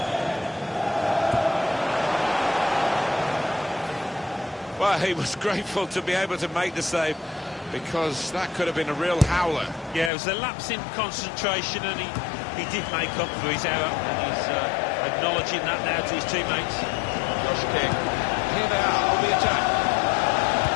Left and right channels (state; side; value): drops out; right; at 10.1 s